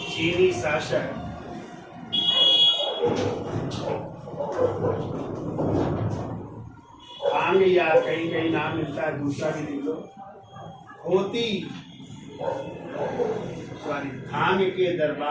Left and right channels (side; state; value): both; identical; correlation 1.00